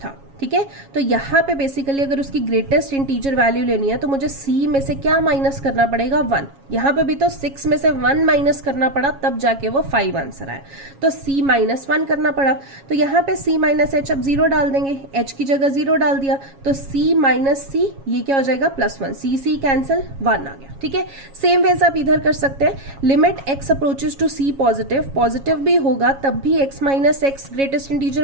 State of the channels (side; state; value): left; late; 7.3 ms